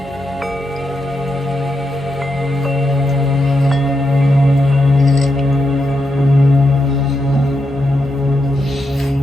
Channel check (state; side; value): normal; both; correlation 0.84